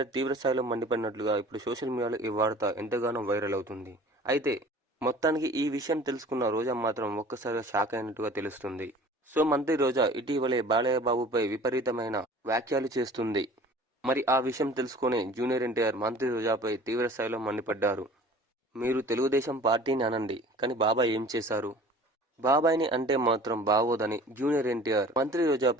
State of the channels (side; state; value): both; normal; correlation 0.45